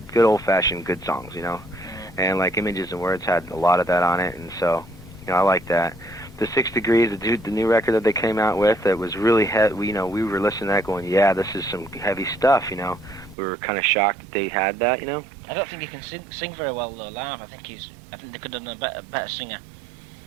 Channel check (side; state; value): left; drops out; at 13.4 s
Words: old fashioned good songs. You know, and like Images and Words had a lot of that on it, and so you know I like that. The 6 Degrees, the new record that they came out with, that was really heavy. You know, we were listening to that going, yeah, this is some heavy stuff. You know, we were kind of shocked that they had that. You know. I don't think he can sing very well though live. I think they could have done a better singer.